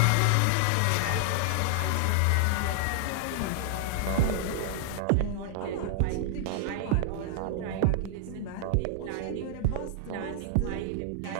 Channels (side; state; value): both; different; correlation 0.00